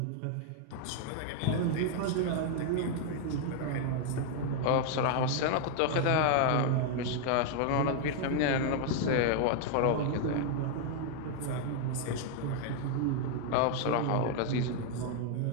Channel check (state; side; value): different; both; correlation 0.00